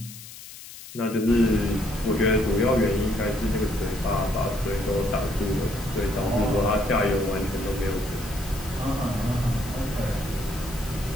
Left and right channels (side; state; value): left; noise; hiss, 15 dB below the sound